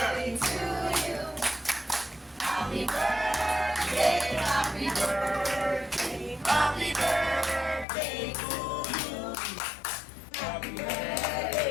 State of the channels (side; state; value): right; drops out; at 7.9 s